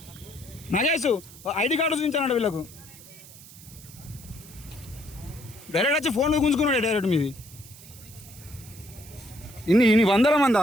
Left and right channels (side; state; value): right; noise; hiss, 19 dB below the sound